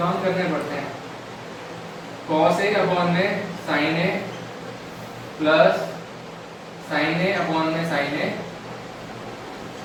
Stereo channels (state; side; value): identical; both; correlation 1.00